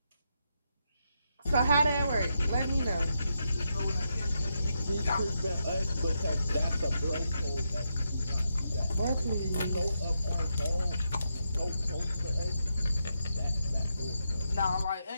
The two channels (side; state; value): both; inverted; correlation -0.83